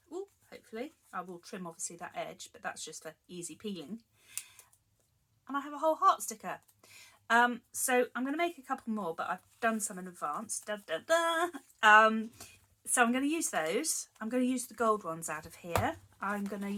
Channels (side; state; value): both; identical; correlation 1.00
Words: Ooh, hopefully I will trim obviously that edge, but that's just for easy peeling, and I have a whole heart sticker. So I'm going to make a couple more, but I've done some in advance. So I'm going to use those. I'm going to use the gold ones out of here. I'm going to